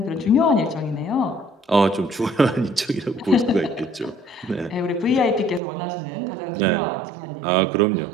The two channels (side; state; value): left; drops out; at 5.6 s